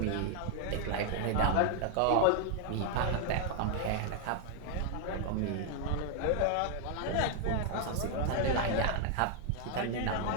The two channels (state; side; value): different; both; correlation 0.00